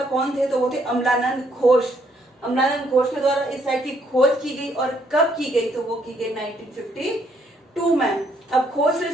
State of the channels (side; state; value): both; normal; correlation 0.70